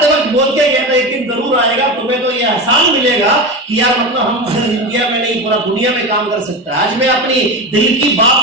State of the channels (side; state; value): both; normal; correlation 0.22